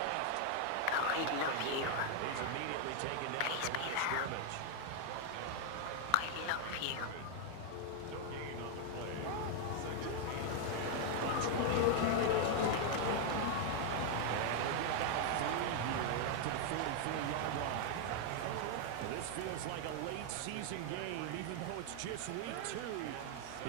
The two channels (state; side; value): different; both; correlation 0.00